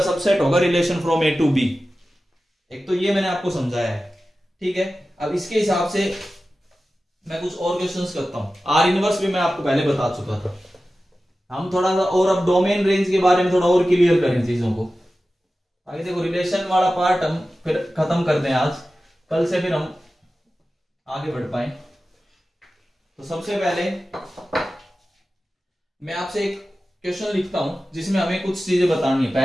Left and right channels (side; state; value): both; normal; correlation 0.94